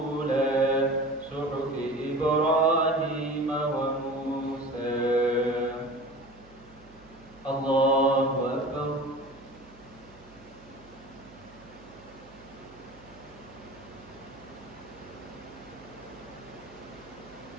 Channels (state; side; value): noise; right; hum, 24 dB below the sound